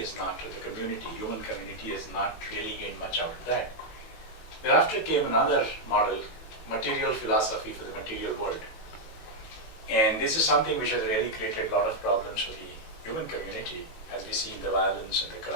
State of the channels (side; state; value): right; late; 18 ms